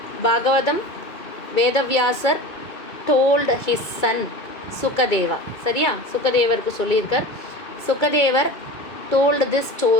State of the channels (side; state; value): right; late; 2.3 ms